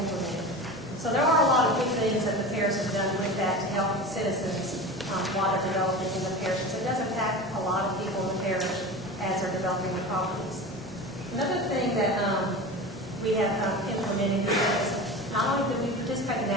So there are a lot of good things that the parish has done with that to help citizens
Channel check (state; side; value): noise; right; hum, 26 dB below the sound